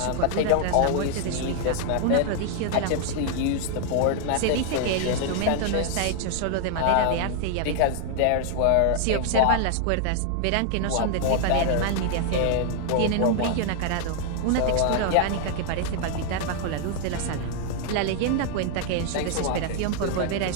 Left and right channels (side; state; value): both; different; correlation 0.00